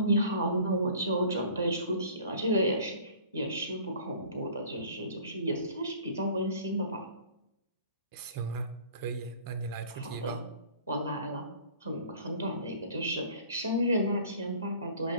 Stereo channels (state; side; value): inverted; both; correlation -0.49